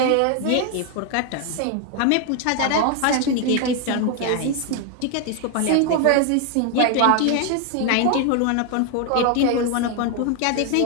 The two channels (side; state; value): both; different; correlation 0.01